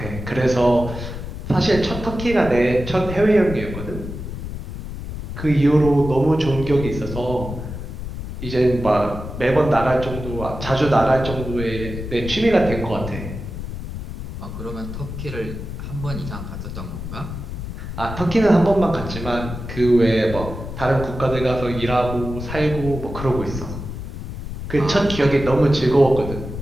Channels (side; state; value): left; noise; rumble, 8 dB below the sound